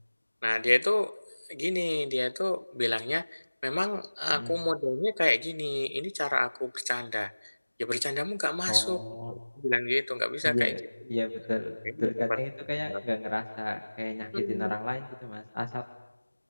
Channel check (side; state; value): both; inverted; correlation -1.00